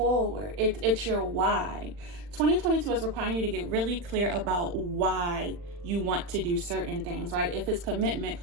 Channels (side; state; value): left; late; 40 ms